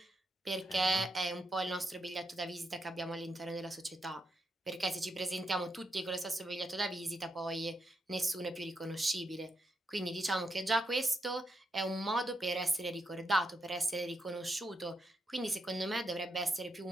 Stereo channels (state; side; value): normal; both; correlation 0.83